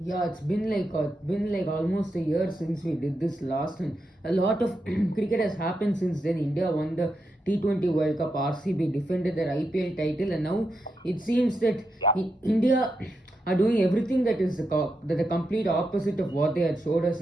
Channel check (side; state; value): both; normal; correlation 0.85